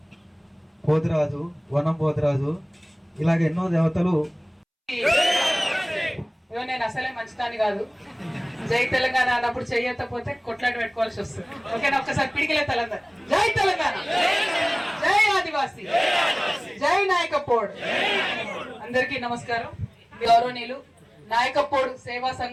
పోతిరాజు, వనం పోతిరాజు, ఇలాగ ఎన్నో దేవతలు. నేను అసలే మంచిదాన్ని కాదు, జై తెలంగాణ అన్నప్పుడు చెయ్యకపోతే కొట్లాట పెట్టుకోవాల్సి వస్తుంది. ఓకేనా? ఒక్కసారి పిడికిలే తెలంగాణ. జై తెలంగాణ, జై ఆదివాసీ, జై నాయకపోడు. అందరికీ నమస్కారం. గౌరవనీయులు నాయకపోడు సేవా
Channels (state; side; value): identical; both; correlation 1.00